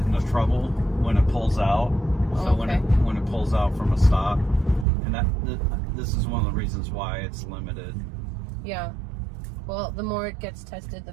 into trouble when it pulls out. So when it pulls out from a stop, and this is one of the reasons why it's limited. Yeah. Well, the more it gets tested, the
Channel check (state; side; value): drops out; left; at 4.9 s